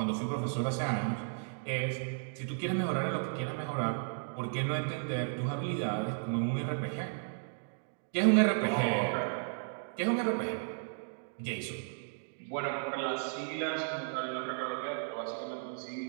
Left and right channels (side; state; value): left; silent; digital silence